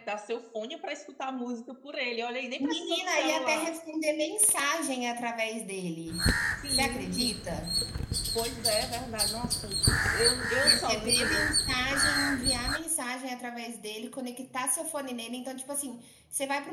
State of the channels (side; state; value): both; identical; correlation 1.00